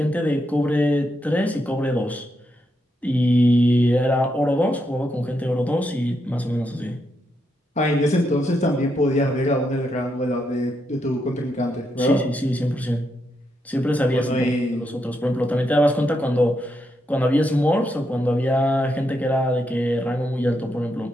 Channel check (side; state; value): both; normal; correlation 0.81